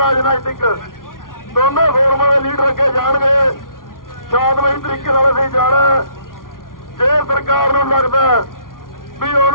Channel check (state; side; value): late; right; 0.90 ms